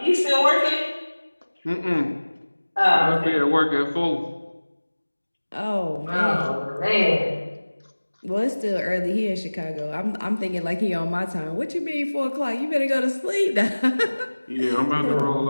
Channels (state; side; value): inverted; both; correlation -1.00